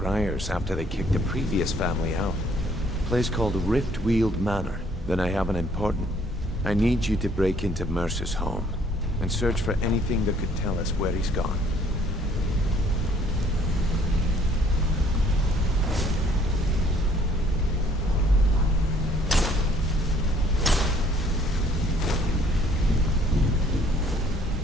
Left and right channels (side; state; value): both; normal; correlation 0.61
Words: after they kicked the previous family out. A place called Riftweald Manor. Then I have an important... I need you to break into Mercer's home and search for anything that could tell us where he's gone.